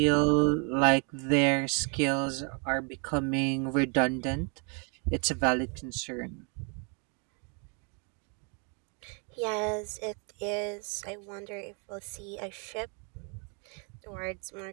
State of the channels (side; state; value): left; quieter; 37.3 dB